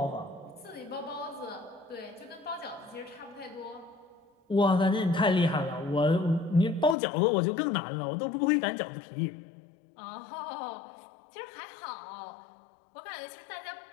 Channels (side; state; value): right; drops out; at 7.0 s